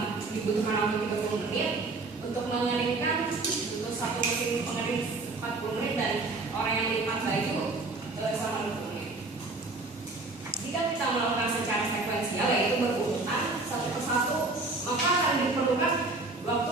dibutuhkan waktu 30 menit. Untuk mengeringkan untuk satu mesin pengering 40 menit, dan orang yang lipat baju selama 20 menit. Jika kita melakukan secara sekuensial, yaitu berurutan satu persatu, maka akan diperlukan waktu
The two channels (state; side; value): quieter; left; 3.4 dB